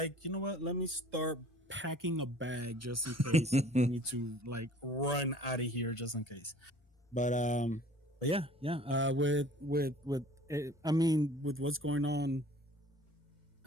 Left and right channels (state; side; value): normal; both; correlation 0.49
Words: you know what? Let me start packing a bag just in case we need to like run out of here just in case. But yeah. With what's going on,